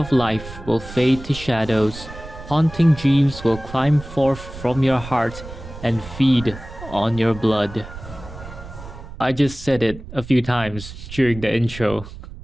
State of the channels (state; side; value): noise; right; rumble, 14 dB below the sound